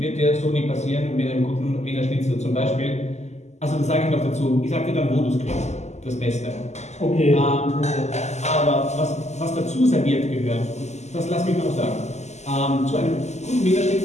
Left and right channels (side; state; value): right; late; 0.33 ms